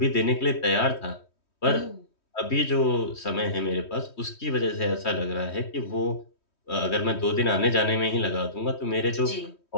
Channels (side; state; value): right; late; 3.1 ms